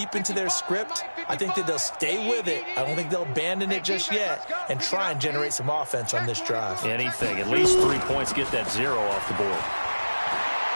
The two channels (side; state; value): both; inverted; correlation -1.00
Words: into their script. I think that they'll stay with it. I don't think they'll abandon it just yet and try and generate some offense on this drive. Anything. At least 3 points, get that 0 off the board.